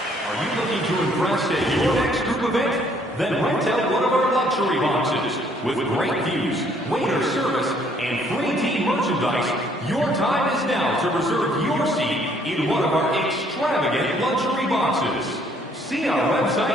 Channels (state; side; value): normal; both; correlation 0.64